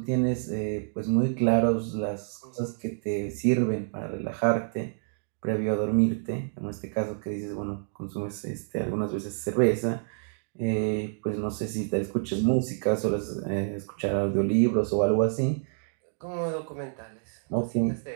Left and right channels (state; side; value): silent; left; digital silence